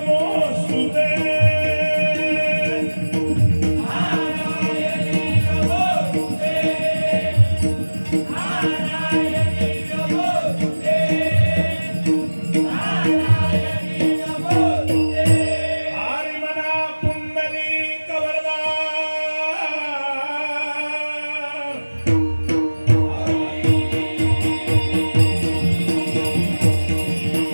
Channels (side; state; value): both; inverted; correlation -1.00